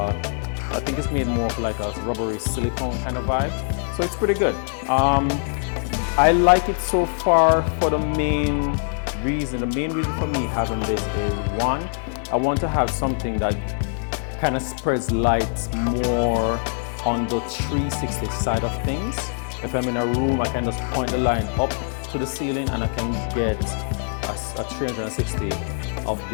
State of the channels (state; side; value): silent; right; 60 dB below the other